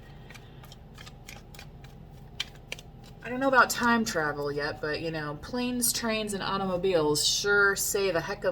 I don't know about time travel yet, but you know, planes, trains, and automobiles sure save a heck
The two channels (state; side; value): identical; both; correlation 1.00